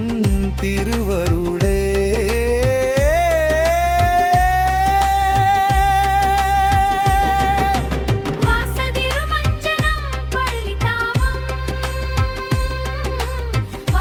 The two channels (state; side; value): identical; both; correlation 1.00